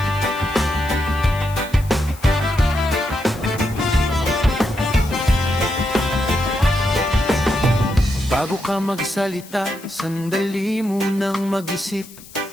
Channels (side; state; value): left; noise; hiss, 20 dB below the sound